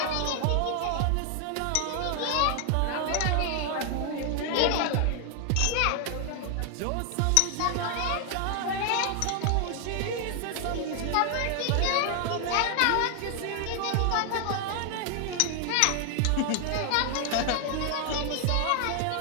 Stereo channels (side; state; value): both; different; correlation 0.00